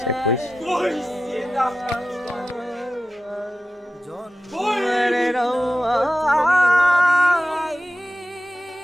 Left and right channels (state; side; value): normal; both; correlation 0.93